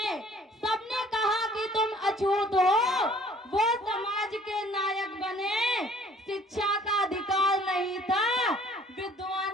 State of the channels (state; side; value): normal; both; correlation 0.56